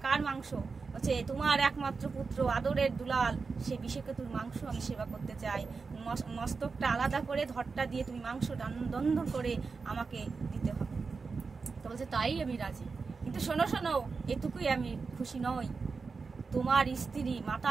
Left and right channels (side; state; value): left; quieter; 4.7 dB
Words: কার মাংস? বলছে, তোমার একমাত্র পুত্র আদরের দুলাল, সেই বিষকেতুর মাংস আমি সেবা করতে চাই। মস্তকটা আলাদা করে ধরটা দিয়ে তুমি মাংস দন্ধ করে আমাকে দিতে হবে। তো বলছে, তাই আমি রাজি, কিন্তু শোনো শোনো, এটুকুই আমি খুশি নই। তোমার স্ত্রী, মাতা